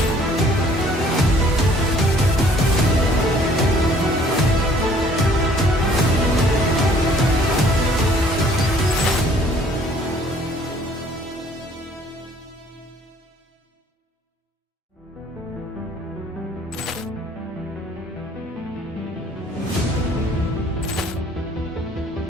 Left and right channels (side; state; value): both; normal; correlation 0.58